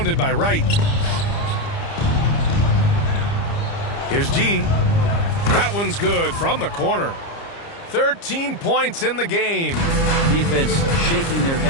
by Wright. Here's G. That one's good from the corner. 13 points in the game. Defense shaking their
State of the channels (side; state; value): right; late; 30 ms